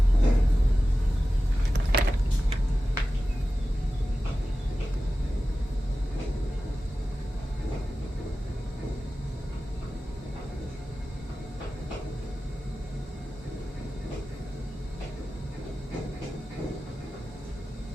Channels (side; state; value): both; normal; correlation 0.94